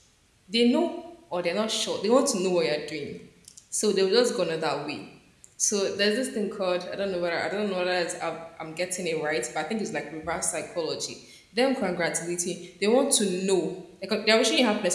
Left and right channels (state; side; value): identical; both; correlation 1.00